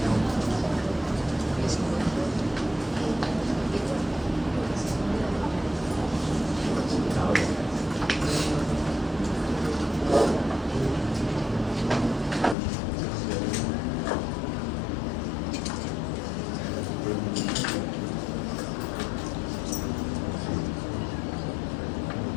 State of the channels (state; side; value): drops out; right; at 12.6 s